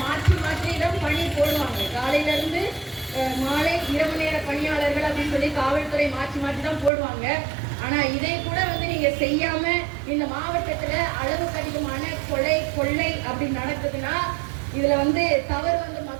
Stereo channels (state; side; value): drops out; left; at 6.9 s